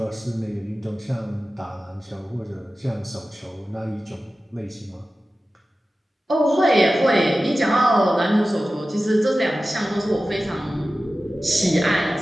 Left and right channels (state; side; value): normal; both; correlation 0.95